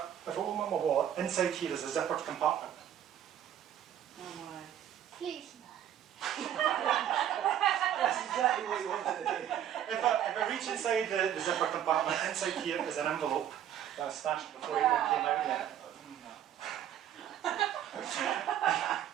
open up my wallet, inside here is a zippered compartment. Oh my. Please no. That's exactly what you wanted to do. If I reach inside the zipper compartment, inside here is an envelope that I stashed before it even came out yet.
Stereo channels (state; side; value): quieter; left; 10.4 dB